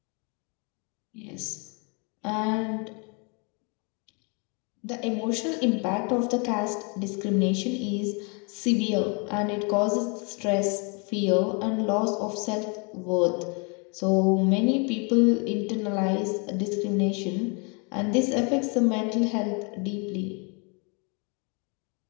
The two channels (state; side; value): quieter; right; 34.0 dB